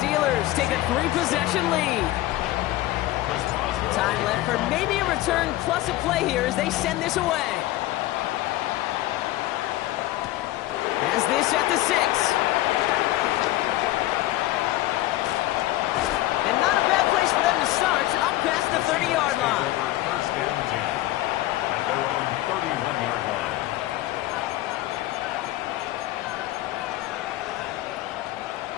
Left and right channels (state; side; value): quieter; right; 16.3 dB